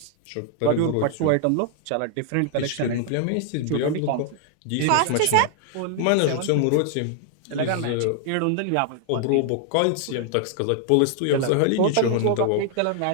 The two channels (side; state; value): both; different; correlation 0.00